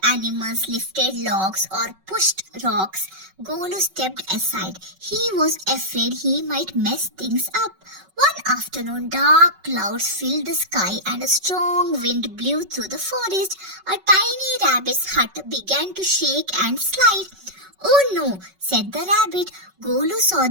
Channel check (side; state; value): left; late; 5.3 ms